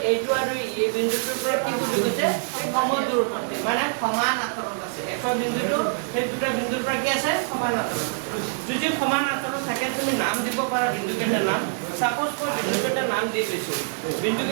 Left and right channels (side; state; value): left; silent; digital silence